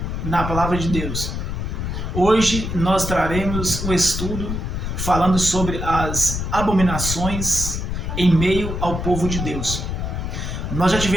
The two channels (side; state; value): left; noise; rumble, 4 dB below the sound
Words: na palavra de Deus. Hoje nós traremos um estudo falando sobre as abominações em meio ao povo de Deus. Nós já